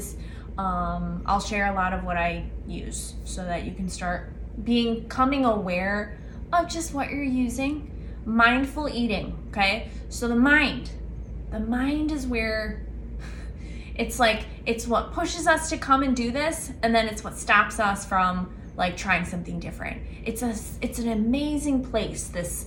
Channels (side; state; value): both; identical; correlation 1.00